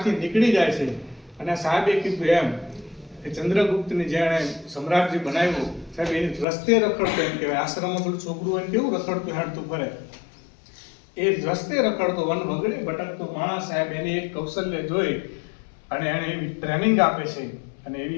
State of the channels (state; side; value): drops out; right; at 6.5 s